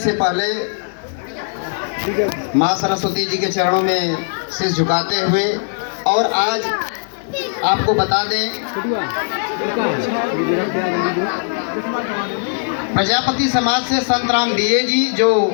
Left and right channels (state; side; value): silent; right; 67 dB below the other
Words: पहले माँ सरस्वती जी के चरणों में सिर झुकाते हुए और आज आपको बता दें, प्रजापति समाज से संत राम बीए जी जो